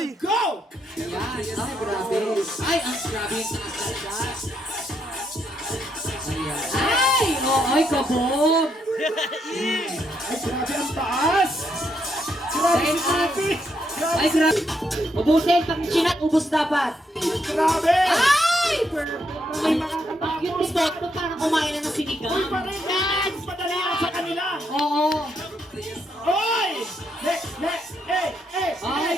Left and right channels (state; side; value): normal; both; correlation 0.77